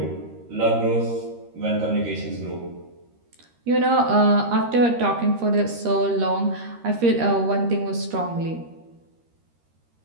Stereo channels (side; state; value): left; late; 13 ms